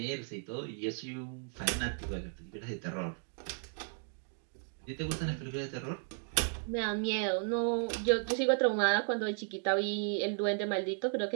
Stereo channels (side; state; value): left; silent; 55 dB below the other